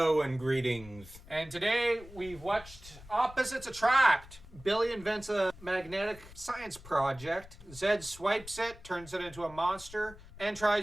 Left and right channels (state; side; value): noise; left; rumble, 19 dB below the sound